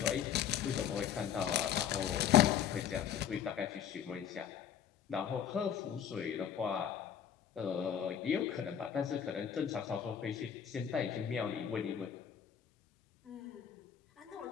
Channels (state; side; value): quieter; right; 8.9 dB